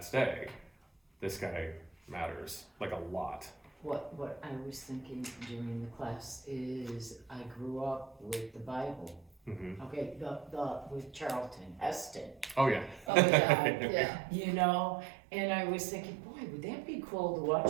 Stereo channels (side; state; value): left; drops out; at 13.1 s